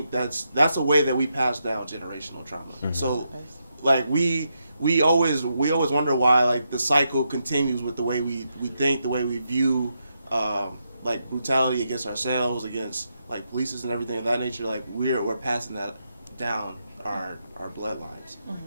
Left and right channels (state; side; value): inverted; both; correlation -0.82